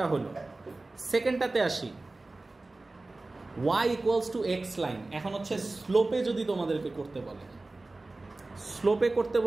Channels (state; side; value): quieter; left; 3.1 dB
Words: হলো। সেকেন্ডটাতে আসি। y equals to x line. এখন হচ্ছে স্লোপে যদি তোমাদেরকে করতে বলে, স্লোপে করতে